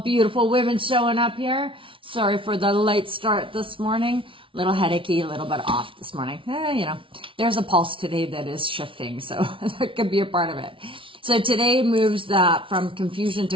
beautiful women showing up here. Sorry for the late start this morning. A little headachy, a little bit off this morning. There's a pulse today that is shifting, so that could be a part of it. So today moves from confusion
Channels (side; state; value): left; late; 0.25 ms